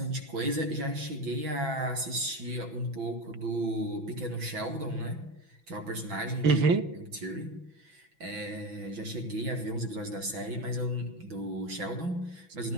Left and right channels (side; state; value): left; late; 6.0 ms